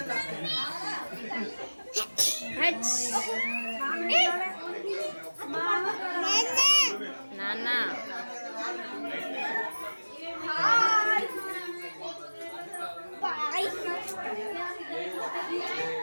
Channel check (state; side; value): inverted; both; correlation -1.00